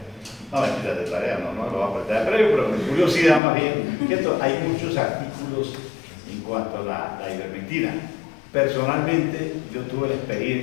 No, mentira de tarea, no lo va a apretar de previo, pero mi curiosidad más bien, que hay muchos artículos en cuanto a la ivermectina. Personalmente, yo tuve la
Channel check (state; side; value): drops out; right; at 3.4 s